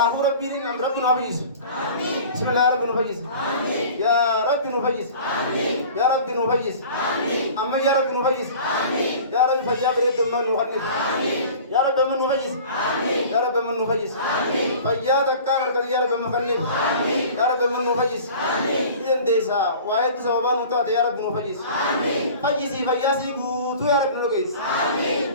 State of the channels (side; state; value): both; inverted; correlation -0.42